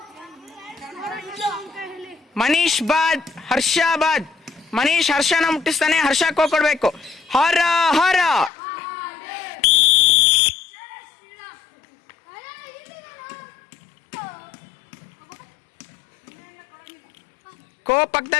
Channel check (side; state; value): right; drops out; at 8.5 s